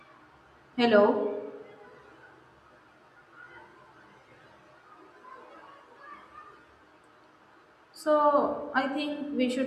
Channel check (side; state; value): both; identical; correlation 1.00